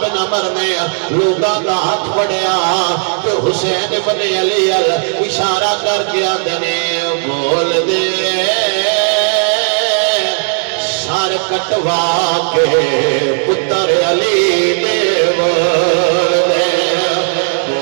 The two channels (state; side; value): silent; left; digital silence